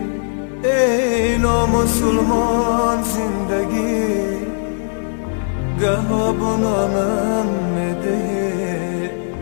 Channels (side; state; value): right; silent; digital silence